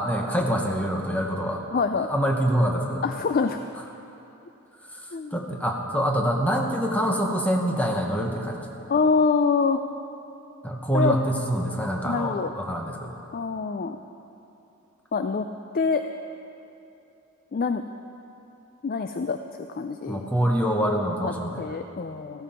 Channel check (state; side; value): normal; both; correlation 0.43